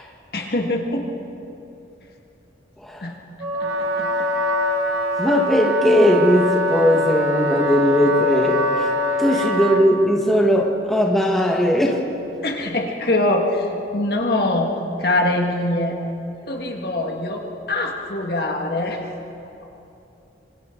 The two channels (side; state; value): both; normal; correlation 0.52